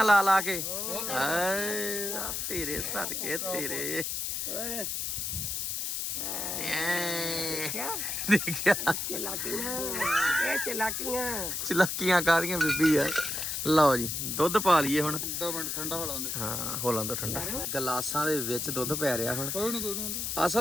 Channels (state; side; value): noise; left; hiss, 2 dB below the sound